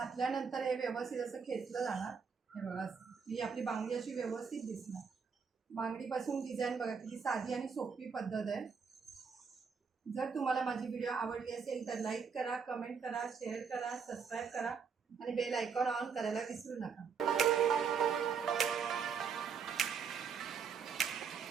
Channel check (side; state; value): left; quieter; 6.1 dB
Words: हे व्यवस्थित असं खेचलं जाणार. हे बघा ही आपली बांगडी अशी व्यवस्थित दिसणार. बांगडीपासून डिझाईन बघा किती साधी आणि सोपी पद्धत आहे. जर तुम्हाला माझी व्हिडिओ आवडली असेल तर लाईक करा, कमेंट करा, शेअर करा, सबस्क्राईब करा आणि बेल आयकॉन ऑन करायला विसरू नका.